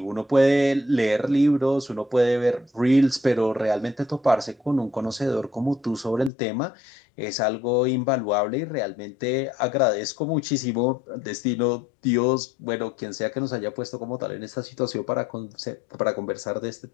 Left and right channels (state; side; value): drops out; right; at 6.3 s